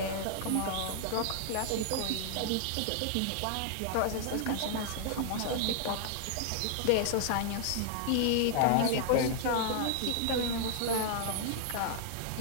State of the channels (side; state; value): both; different; correlation 0.00